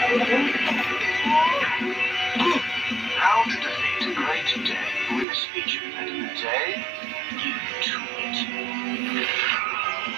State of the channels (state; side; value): drops out; left; at 5.2 s